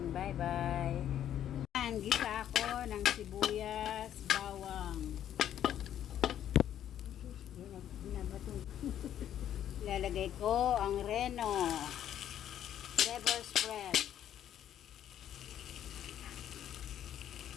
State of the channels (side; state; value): right; quieter; 10.7 dB